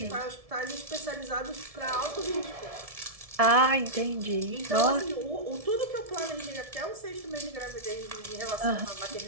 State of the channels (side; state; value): left; late; 1.7 ms